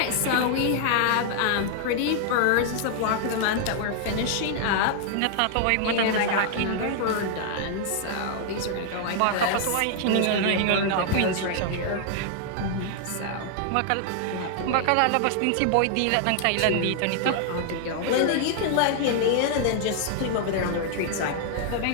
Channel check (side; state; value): both; different; correlation 0.00